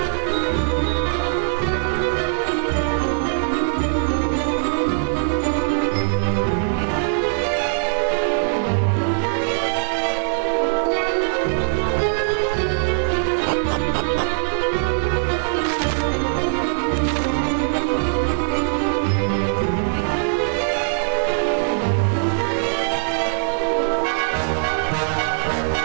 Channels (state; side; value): silent; left; 65 dB below the other